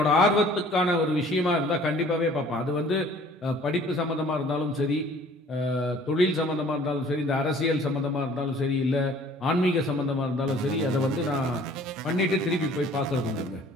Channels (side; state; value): both; normal; correlation 0.53